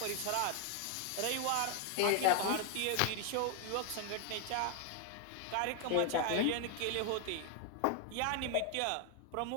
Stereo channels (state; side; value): different; both; correlation 0.00